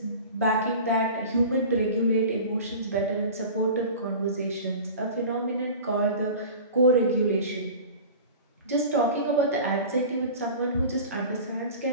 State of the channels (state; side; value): inverted; both; correlation -0.37